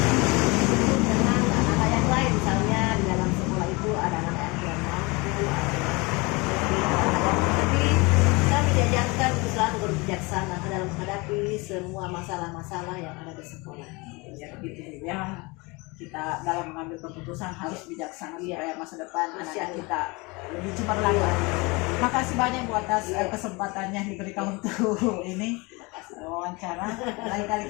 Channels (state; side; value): quieter; right; 26.1 dB